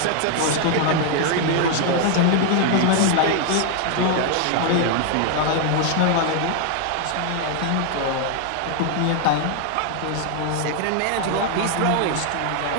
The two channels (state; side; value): different; both; correlation 0.00